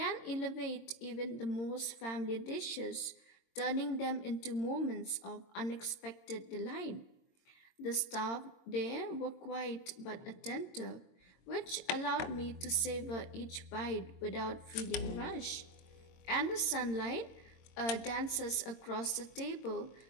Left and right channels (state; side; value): late; right; 22 ms